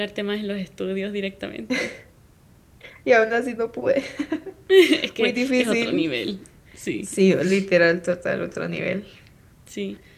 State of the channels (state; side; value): identical; both; correlation 1.00